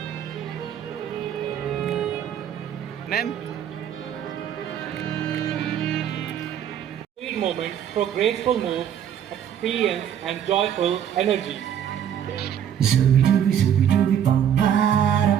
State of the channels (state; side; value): quieter; left; 9.4 dB